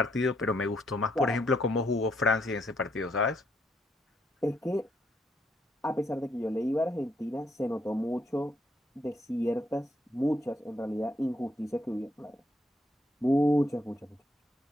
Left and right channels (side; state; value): both; normal; correlation 0.74